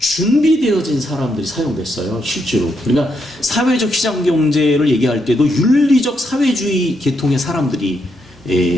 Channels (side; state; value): both; normal; correlation 0.79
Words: 사람들이 사용됐어요, 실제로. 그러니까 사회적 시장 경제를 얘기할 때도 윤리적 사회주의 계통의 사람들이